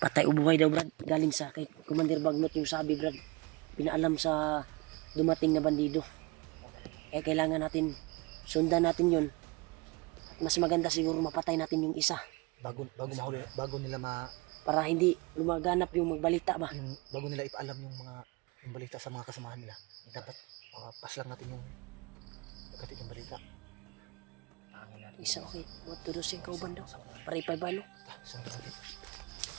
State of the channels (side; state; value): left; quieter; 25.7 dB